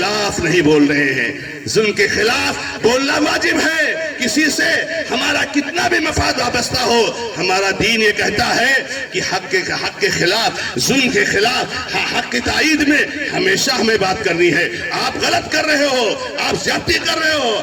نہیں بول رہے ہیں. ظلم کے خلاف بولنا واجب ہے. کسی سے ہمارا کتنا بھی مفاد وابستہ ہو، ہمارا دین یہ کہتا ہے کہ حق کے خلاف، ظلم کے خلاف، حق کی تائید میں ہمیشہ ہمیں بات کرنی ہے. آپ غلط کر رہے ہو، آپ زیادتی کر رہے ہو،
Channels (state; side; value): identical; both; correlation 1.00